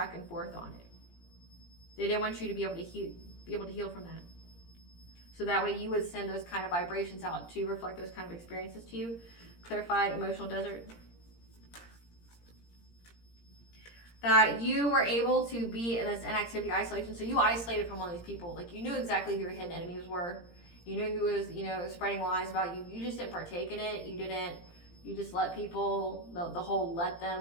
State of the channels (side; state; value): right; late; 17 ms